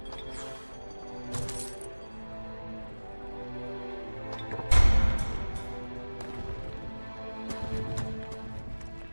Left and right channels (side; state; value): both; inverted; correlation -1.00